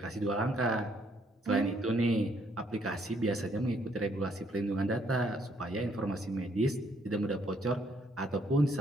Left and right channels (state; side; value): normal; both; correlation 0.69